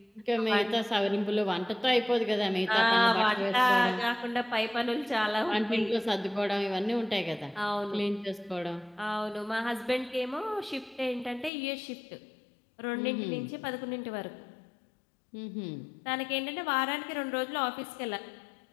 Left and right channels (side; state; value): right; drops out; at 11.5 s